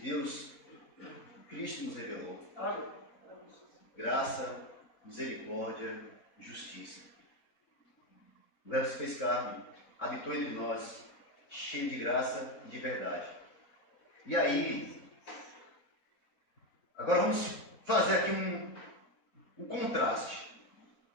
Cristo nos revelou. Graça, misericórdia, justiça. O Verbo se fez carne, habitou entre nós, cheio de graça e de verdade. E aí, agora vamos fazer aqui um contraste.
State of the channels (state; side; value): late; right; 4.0 ms